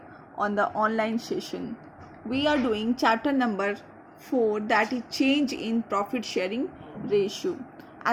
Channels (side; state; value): both; identical; correlation 1.00